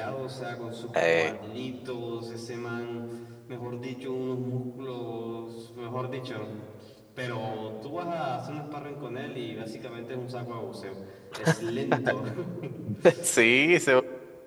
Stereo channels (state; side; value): identical; both; correlation 1.00